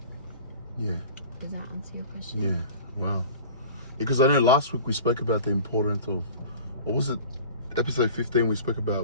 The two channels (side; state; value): both; inverted; correlation -0.41